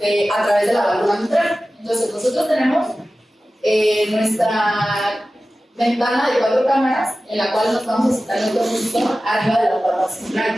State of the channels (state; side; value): normal; both; correlation 0.95